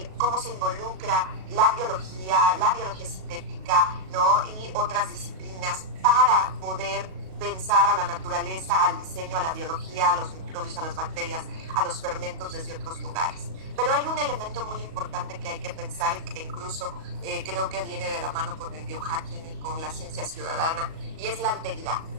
cómo se involucra la biología sintética, ¿no? Y otras disciplinas para poder pensar a la naturaleza, al diseño, a la biología, a los microbios, a las bacterias, a los fermentos desde otros lugares. Pero hay un elemento muy importante que hay que pensar y que incluso creo que viene de la mano con el biohacking y con la ciencia ciudadana, y es la alteridad.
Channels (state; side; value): late; left; 37 ms